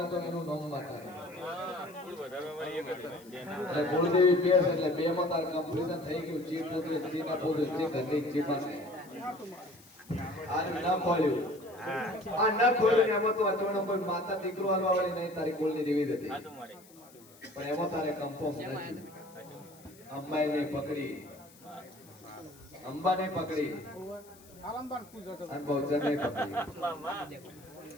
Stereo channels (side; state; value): left; noise; hiss, 24 dB below the sound